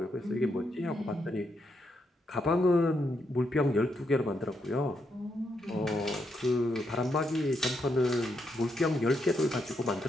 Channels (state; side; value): normal; both; correlation 0.80